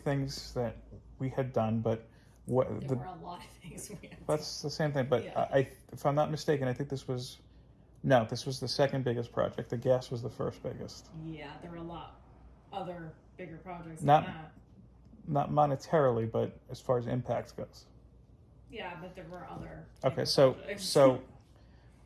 that we had done, but there were a lot of things we had. that's the same thing. But Yeah. if I'm not mistaken, I think this was the second biggest project. The gas was the first biggest. Yeah, there were a lot other bigger projects Not- than that. Not monetarily, but as far as impact goes. Yeah, but there were other Okay, bigger so projects.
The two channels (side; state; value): both; identical; correlation 1.00